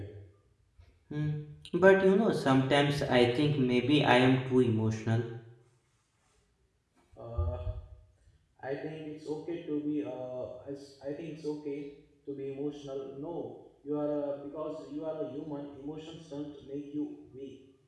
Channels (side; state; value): both; identical; correlation 1.00